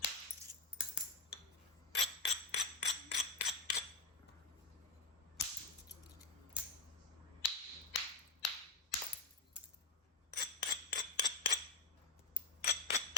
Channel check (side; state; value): right; quieter; 3.5 dB